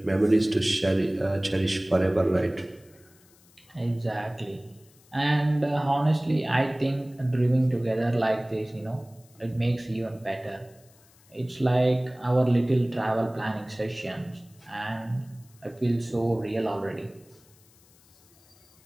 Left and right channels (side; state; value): left; noise; hiss, 29 dB below the sound